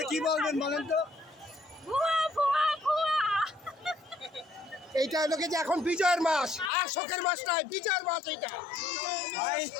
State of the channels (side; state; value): right; drops out; at 6.7 s